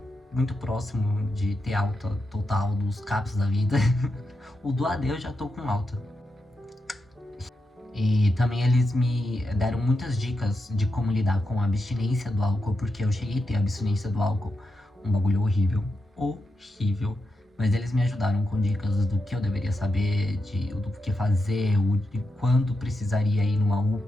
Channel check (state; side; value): normal; both; correlation 0.87